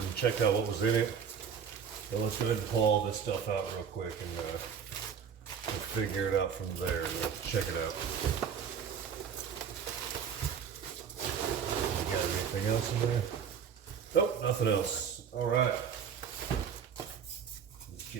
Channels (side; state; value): left; quieter; 7.3 dB